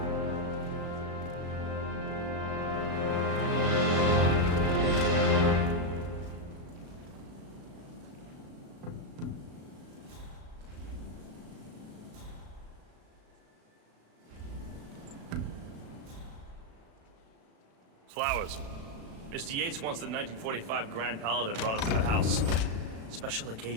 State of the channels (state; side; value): late; left; 36 ms